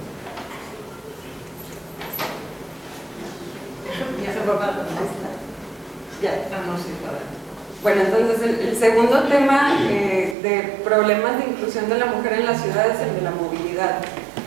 Bueno, entonces el segundo tema de problemas de inclusión de la mujer en la ciudad es el de la movilidad.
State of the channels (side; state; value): left; drops out; at 10.4 s